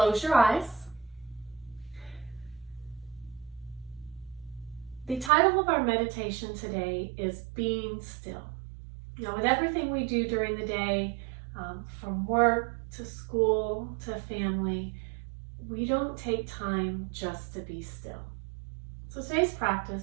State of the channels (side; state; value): left; drops out; at 5.3 s